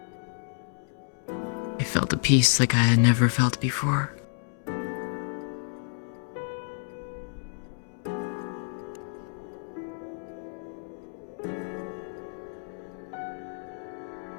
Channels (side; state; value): right; silent; 58 dB below the other